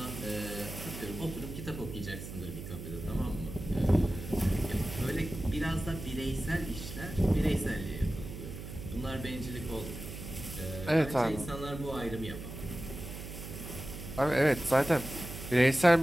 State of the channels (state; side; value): noise; right; hum, 10 dB below the sound